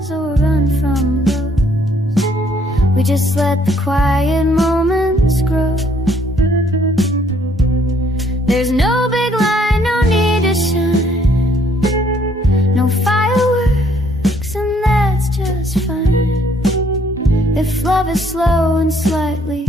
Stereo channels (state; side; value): normal; both; correlation 0.65